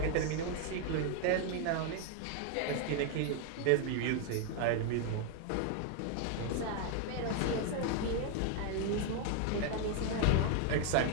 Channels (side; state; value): both; different; correlation 0.00